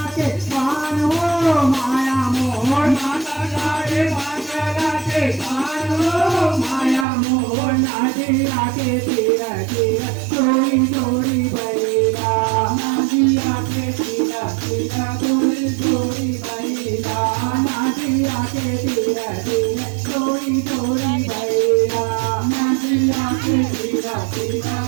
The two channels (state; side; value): drops out; left; at 7.1 s